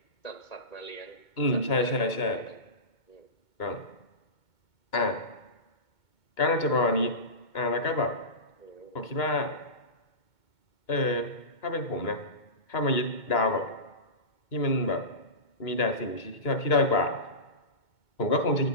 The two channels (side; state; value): right; late; 2.2 ms